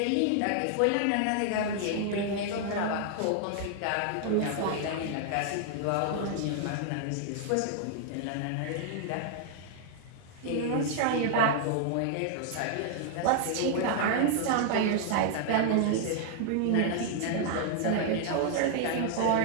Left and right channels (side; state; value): both; different; correlation 0.00